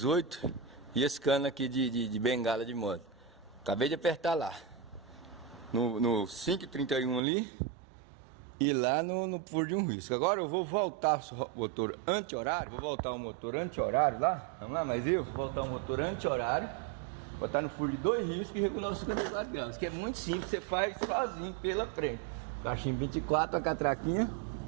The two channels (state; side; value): drops out; left; at 7.2 s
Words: e esse cano aqui de bengala de moto. Acabei de apertar lá. No 5,31 ali. E lá no furo de um risco. Agora eu vou voltar o motor anti-horário. Vou voltar o motor anti-horário lá. Vamos lá, mas eu vou voltar o motor anti-horário. Botar no furo de 2 riscos e regular os 54 graus. Que é muito simples, você faz sozinho pela frente. Cachimbo 24, a catraquinha.